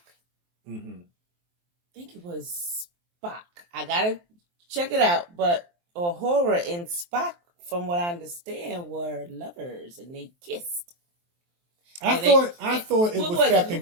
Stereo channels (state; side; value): late; left; 23 ms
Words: I think it was Spock. I gotta check it out, but horror and Spock, from what I understand, were lovers and they kissed. I thought it was Captain